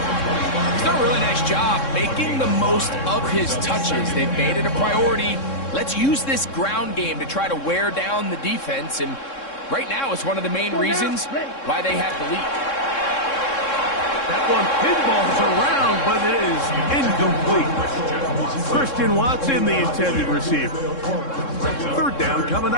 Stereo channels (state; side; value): late; right; 3.7 ms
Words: He's done a really nice job making the most of his touches. They've made it a priority. Let's use this ground game to try to wear down the defense. And right now, it's one of the main reasons why they have the lead. That one pinballs around, but it is incomplete. Christian Watson, the intended receiver. Third down coming